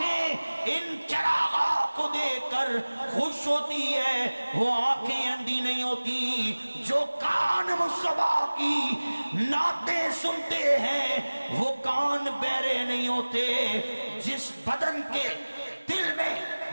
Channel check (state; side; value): inverted; both; correlation -1.00